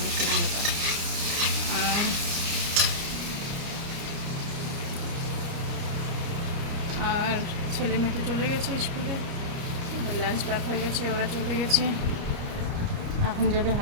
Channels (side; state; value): left; late; 29 ms